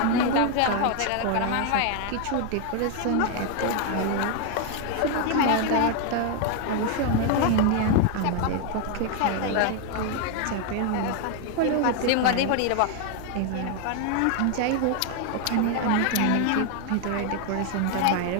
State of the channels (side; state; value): both; different; correlation 0.01